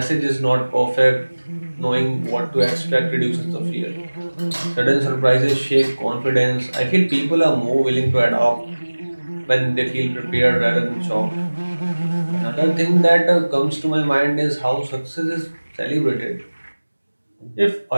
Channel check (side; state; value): both; inverted; correlation -1.00